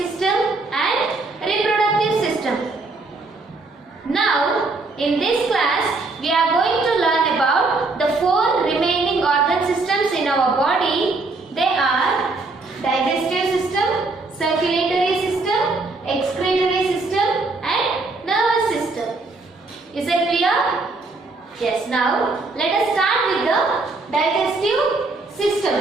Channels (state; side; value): quieter; left; 3.5 dB